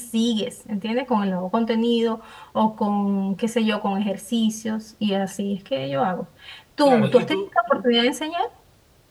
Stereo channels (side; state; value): both; identical; correlation 1.00